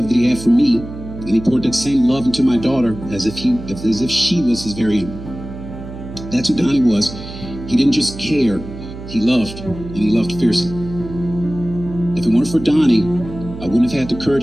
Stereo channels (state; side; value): noise; right; hum, 12 dB below the sound